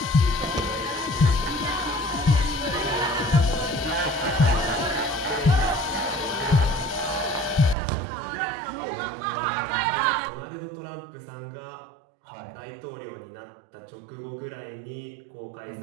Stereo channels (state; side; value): drops out; left; at 7.8 s